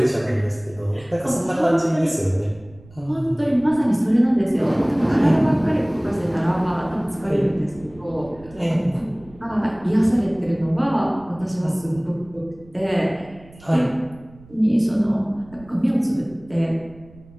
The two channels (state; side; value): noise; right; rumble, 23 dB below the sound